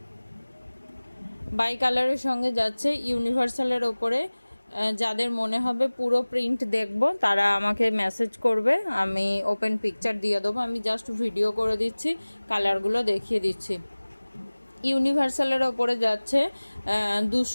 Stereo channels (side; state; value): both; inverted; correlation -1.00